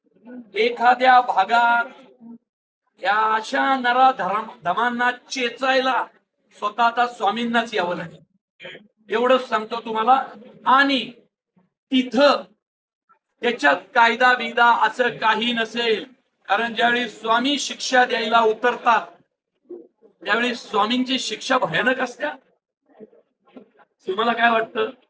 एखाद्या भागात या अशा नरा धमांना चेचायला स्वतः आता स्वामींनाच यावं लागेल, एवढंच सांगतो तुम्हाला. आणि तिथं त्याच्यात कायदा बिदा असं काही नसेल, कारण ज्यावेळी स्वामी शिक्षा द्यायला उतरतात त्यावेळी स्वामींची शिक्षा भयानक असते. तुम्हाला काय वाटतं?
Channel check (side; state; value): both; identical; correlation 1.00